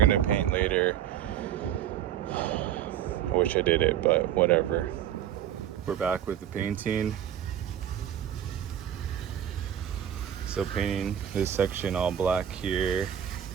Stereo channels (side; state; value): left; quieter; 10.4 dB